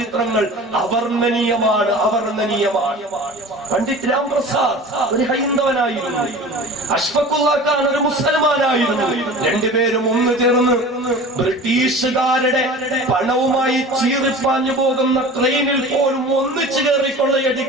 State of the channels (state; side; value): normal; both; correlation 0.39